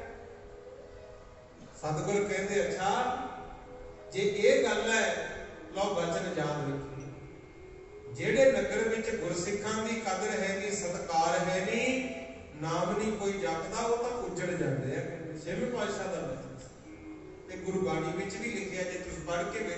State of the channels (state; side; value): identical; both; correlation 1.00